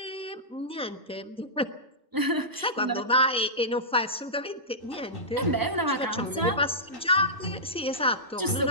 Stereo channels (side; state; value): both; normal; correlation -0.15